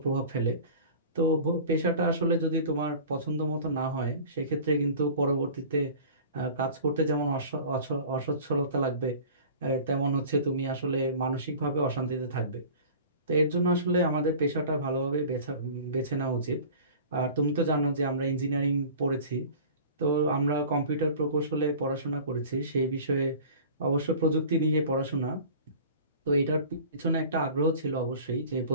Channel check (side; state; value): both; inverted; correlation -0.42